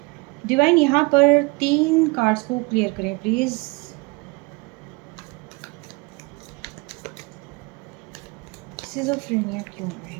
डिवाइन यहाँ पर 3 कार्ड्स को क्लियर करें प्लीज़। सिज़ोफ्रेनिया क्यों आ रहा है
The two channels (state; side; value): quieter; left; 27.0 dB